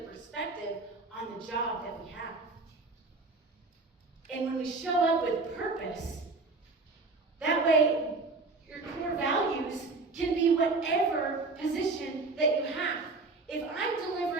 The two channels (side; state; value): left; quieter; 3.6 dB